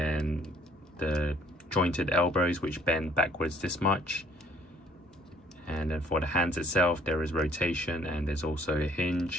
the jointed elbows which bend backwards this much. And then for the hands itself, there is rotation, and there's also a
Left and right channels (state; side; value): normal; both; correlation 0.60